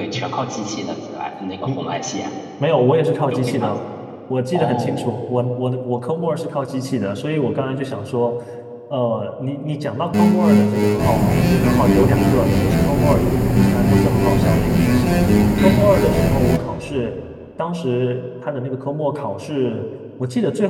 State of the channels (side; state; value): both; identical; correlation 1.00